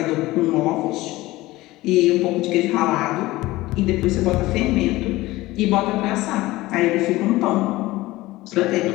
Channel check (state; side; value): quieter; right; 18.6 dB